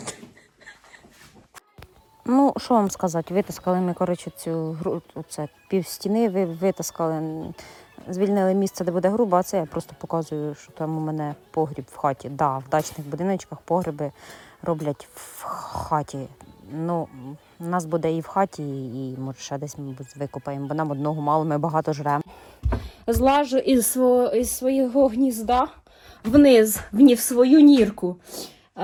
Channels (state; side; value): identical; both; correlation 1.00